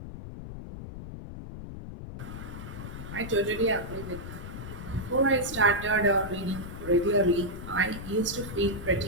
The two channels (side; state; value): left; noise; rumble, 10 dB below the sound